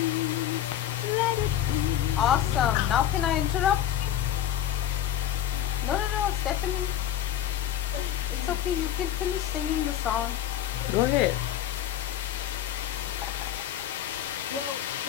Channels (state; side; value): quieter; right; 11.2 dB